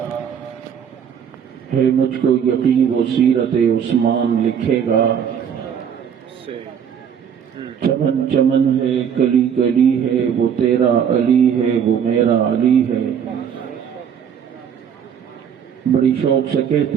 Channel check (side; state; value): left; quieter; 8.0 dB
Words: ہے مجھ کو یقین وہ سیرت عثمان لکھے گا. چمن چمن ہے کلی کلی ہے وہ تیرا علی ہے وہ میرا علی ہے. بڑی شوق سے